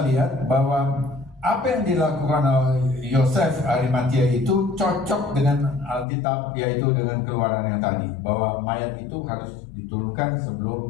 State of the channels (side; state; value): right; drops out; at 6.1 s